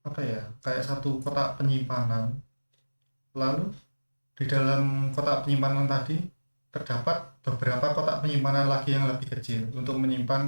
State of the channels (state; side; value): inverted; both; correlation -1.00